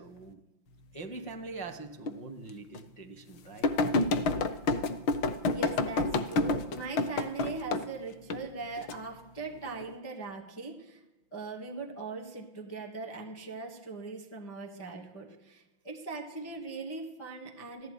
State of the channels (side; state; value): right; late; 5.8 ms